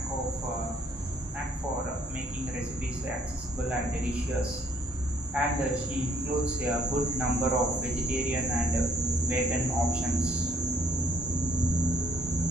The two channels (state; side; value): normal; both; correlation 0.65